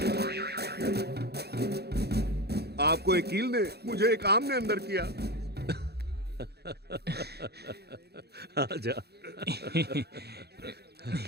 आपको एक कील ने, मुझे एक आम ने अंदर किया। आजा।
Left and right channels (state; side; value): late; left; 0.47 ms